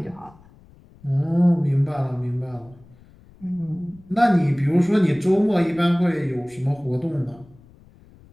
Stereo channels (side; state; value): left; noise; rumble, 26 dB below the sound